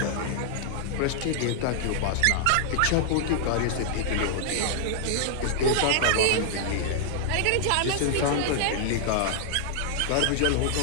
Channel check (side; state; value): both; different; correlation -0.01